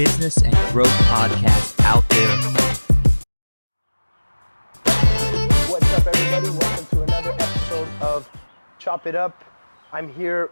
and growth podcast out there. What's up, everybody? Welcome to another episode of Chop It Up. I'm here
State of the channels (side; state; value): both; inverted; correlation -1.00